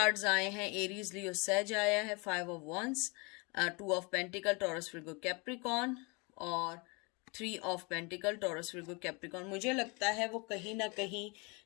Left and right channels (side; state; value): right; quieter; 29.4 dB